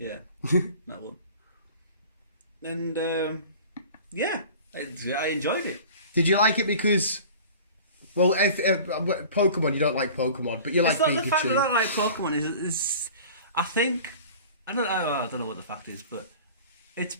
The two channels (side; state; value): both; inverted; correlation -0.42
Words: that one. And yeah, I enjoyed it. Did you like it because, well, if Pokemon, you don't like Pokemon, but you like Pikachu. It's not the fact that I don't like Pokemon. Is I think I don't know what the fact is, but it's